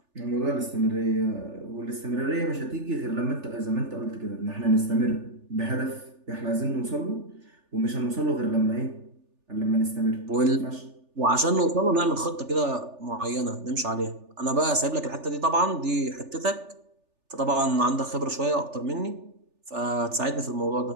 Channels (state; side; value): late; left; 3.4 ms